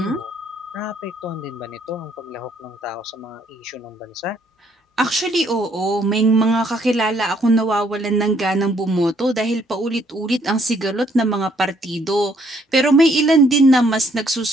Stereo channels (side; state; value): both; normal; correlation 0.67